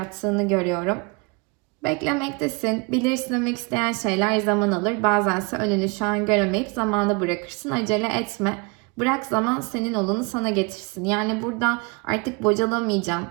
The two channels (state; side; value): quieter; left; 29.2 dB